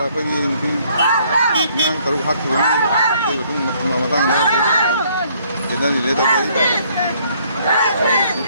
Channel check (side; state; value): both; inverted; correlation -0.64